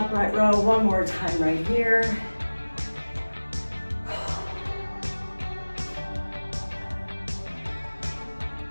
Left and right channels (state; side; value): inverted; both; correlation -1.00